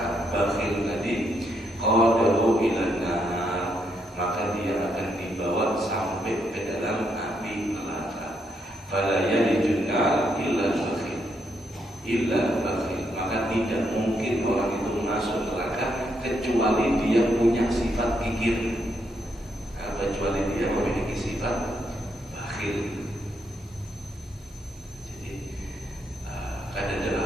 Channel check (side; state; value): both; normal; correlation 0.77